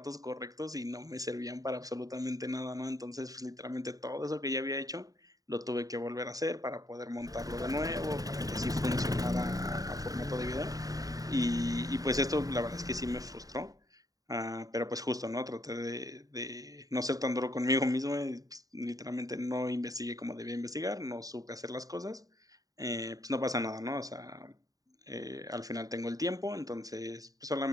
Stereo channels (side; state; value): left; late; 0.18 ms